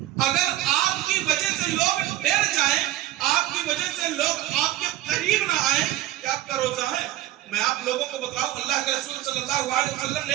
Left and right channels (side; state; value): left; quieter; 14.2 dB